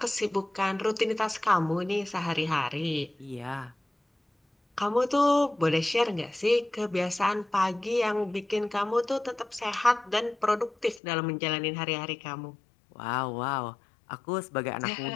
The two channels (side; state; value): right; drops out; at 11.0 s